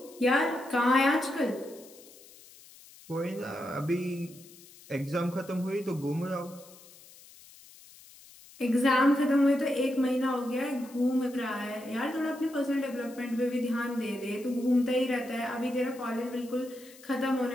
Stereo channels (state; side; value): noise; left; hiss, 22 dB below the sound